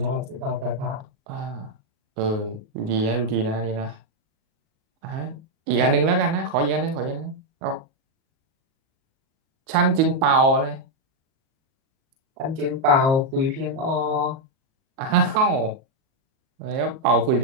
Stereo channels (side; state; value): left; late; 38 ms